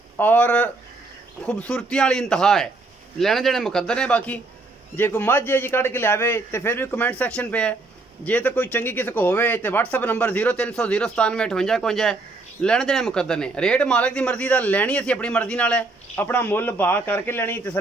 और खूबसूरती वाली इंतहा है। लेने देने मुकद्दर ने। बाकी जे कोई मझ है जी कढ़ के लियावे तो फिर भी कमेंट सैक्शन पे है। जे तो कोई चंगी किसी को होवे तो व्हाट्सअप नंबर 0300 097 58 है। लेने देने मुकद्दर ने। रेट मालक की मर्जी का लैनी असी अपनी मर्जी नाल है। अपना मुल भाव करके लैनी,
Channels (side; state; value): left; quieter; 3.3 dB